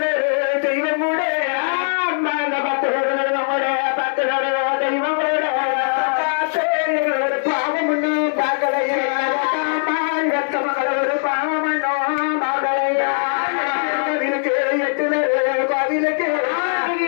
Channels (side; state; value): right; silent; 66 dB below the other